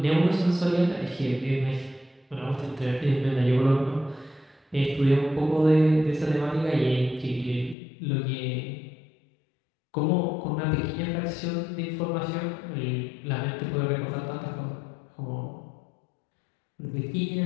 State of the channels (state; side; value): drops out; right; at 7.8 s